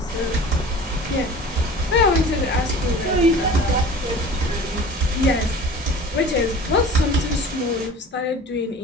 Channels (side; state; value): both; normal; correlation 0.41